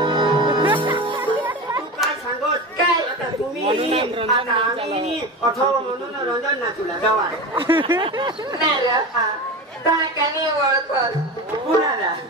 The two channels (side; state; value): both; normal; correlation 0.26